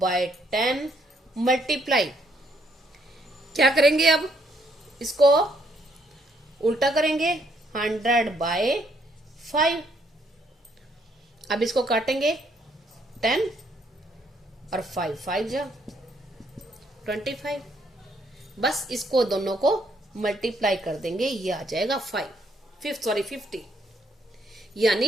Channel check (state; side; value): normal; both; correlation 0.70